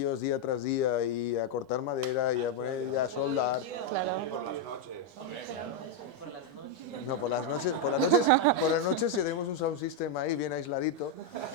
día tras día y a cortar madera y a poner y a soldar... No, por las noches tenemos un sound system ahí bien aisladito.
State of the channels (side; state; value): both; normal; correlation 0.01